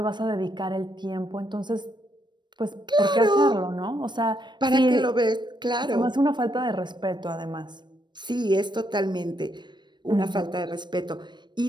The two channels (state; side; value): late; left; 0.22 ms